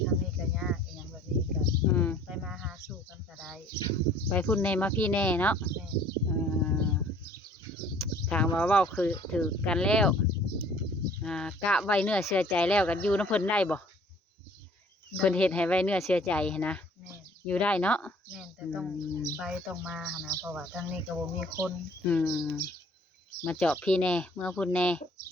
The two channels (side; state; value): both; normal; correlation 0.55